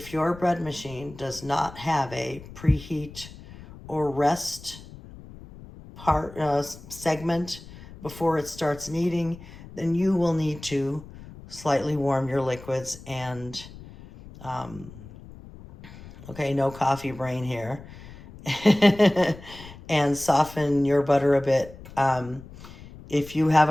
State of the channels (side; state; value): left; noise; rumble, 17 dB below the sound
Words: your bread machine does not have a preheat or rest segment before it starts kneading, then you will need to slightly warm your liquids and, okay, no coffee brain here, and soften your butter a bit. If you have